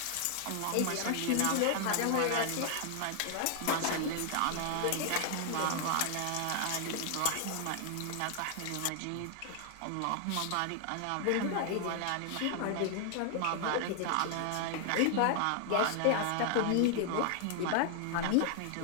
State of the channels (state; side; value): different; both; correlation 0.00